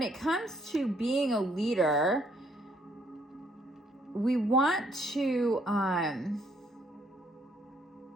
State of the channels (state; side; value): normal; both; correlation 0.68